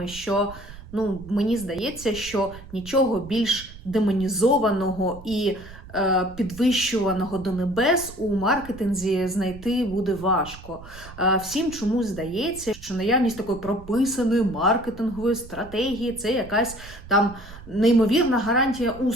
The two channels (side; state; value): right; noise; rumble, 17 dB below the sound